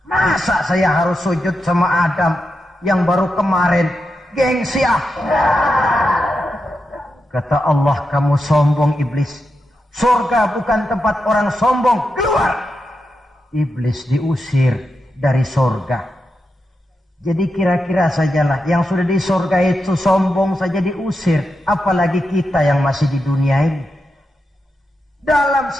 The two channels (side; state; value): both; normal; correlation 0.88